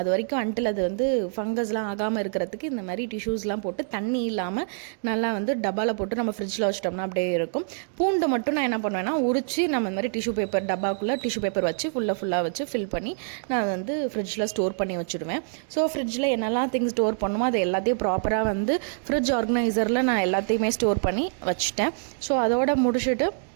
வரைக்கும் அன்டில் அது வந்து ஃபங்கஸ்லாம் ஆகாமல் இருக்கிறதுக்கு இந்த மாதிரி டிஷ்யூஸ்லாம் போட்டு தண்ணி இல்லாமல் நல்லா வந்து டப்பாவில் போட்டு நம்ம ஃப்ரிட்ஜில் வச்சிட்டோம்னா அப்படியே இருக்கும். பூண்டு மட்டும் நான் என்ன பண்ணுவேன்னா உரிச்சு நம்ம இந்த மாதிரி டிஷ்யூ பேப்பர் டப்பாக்குள்ளே டிஷ்யூ பேப்பர் வச்சு ஃபுல்லாக வச்சு ஃபில் பண்ணி நான் வந்து ஃப்ரிட்ஜில் ஸ்டோர் பண்ணி வச்சுடுவேன். ஸோ ஃப்ரிட்ஜில் என்னெல்லாம் திங்ஸ் ஸ்டோர் பண்ணுமோ அது எல்லாத்தையும் ப்ராப்பராக வந்து ஃப்ரிட்ஜ் ஆர்கனைசரில் நான் எல்லாத்தையுமே ஸ்டோர் பண்ணி வச்சுட்டேன். ஸோ அதோட முடிச்சுட்டு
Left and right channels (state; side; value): silent; left; digital silence